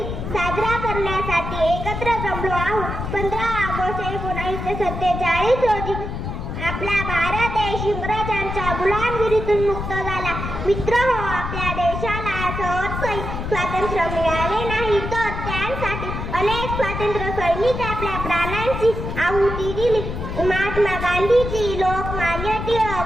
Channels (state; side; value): noise; left; rumble, 5 dB below the sound